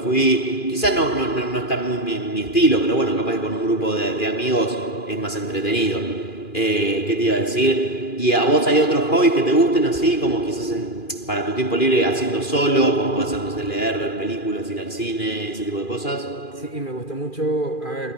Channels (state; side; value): late; right; 2.4 ms